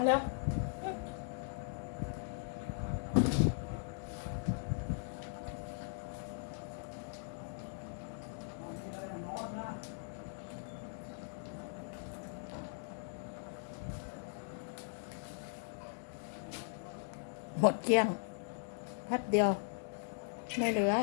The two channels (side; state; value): right; silent; digital silence